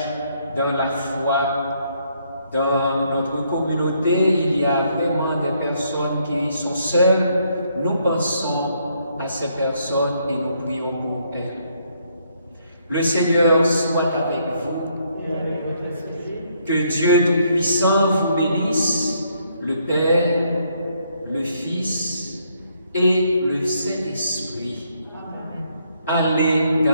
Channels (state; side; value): inverted; both; correlation -0.71